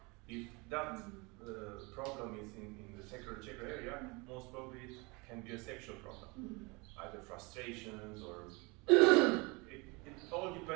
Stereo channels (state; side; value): quieter; left; 27.3 dB